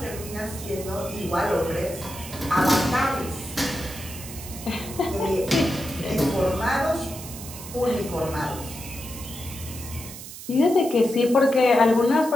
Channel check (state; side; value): noise; right; hiss, 12 dB below the sound